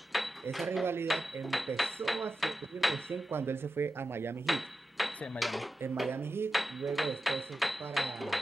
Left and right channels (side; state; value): both; normal; correlation 0.92